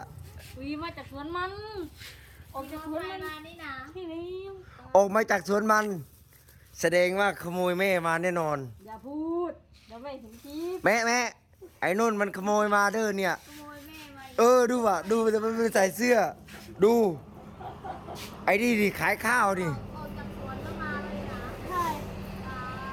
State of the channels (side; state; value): both; identical; correlation 1.00